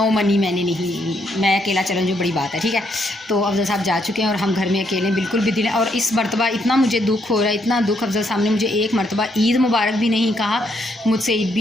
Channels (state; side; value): normal; both; correlation 0.74